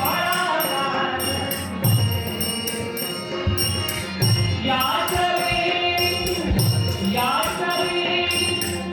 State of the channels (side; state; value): both; identical; correlation 1.00